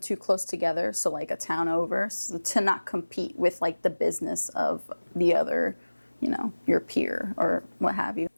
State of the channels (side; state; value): both; inverted; correlation -1.00